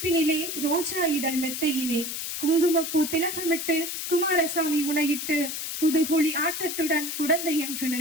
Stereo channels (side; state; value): left; noise; hiss, 5 dB below the sound